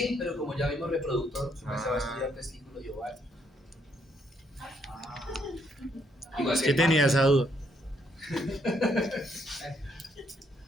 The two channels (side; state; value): both; normal; correlation 0.72